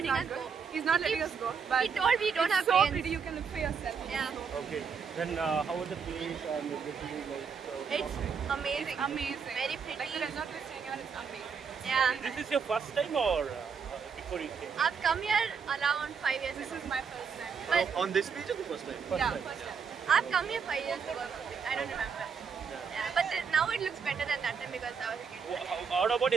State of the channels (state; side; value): quieter; left; 6.2 dB